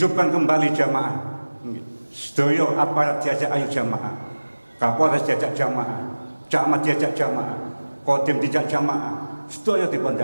kembali jamaah. Sedaya aparat diajak ayo jamaah. Kapolres diajak jamaah, camat diajak jamaah, kodim diajak jamaah, sedaya dipun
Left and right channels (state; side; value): inverted; both; correlation -1.00